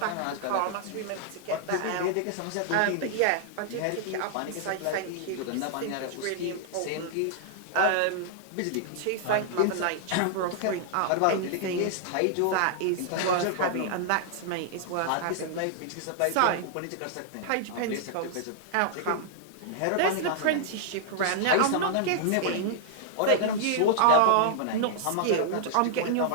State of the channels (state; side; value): different; both; correlation -0.01